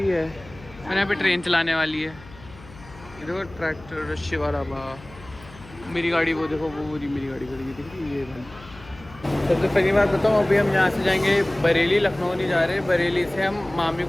है, मैंने यहाँ पे ट्रेन चलाने वाली है। ये देखो ट्रैक्टर, शिवा ढाबा। मेरी गाड़ी वो देखो, वो मेरी गाड़ी खड़ी है, दिख रही है ये गाड़ी। सबसे पहली बात बताऊँ, अभी हम यहाँ से जाएंगे बरेली, लखनऊ नहीं जा रहे। बरेली से हम मामी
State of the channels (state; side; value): noise; left; hum, 20 dB below the sound